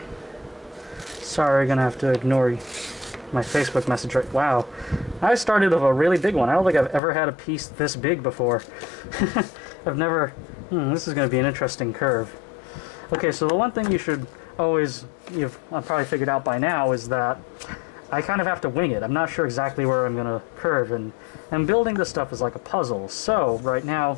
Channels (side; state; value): right; drops out; at 7.0 s